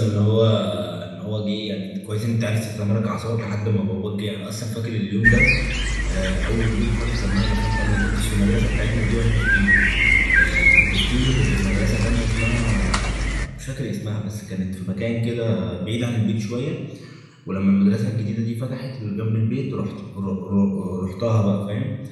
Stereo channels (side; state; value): both; identical; correlation 1.00